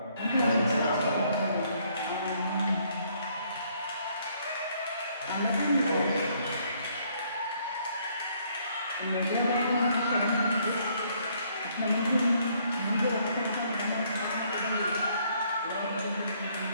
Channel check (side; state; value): both; inverted; correlation -0.67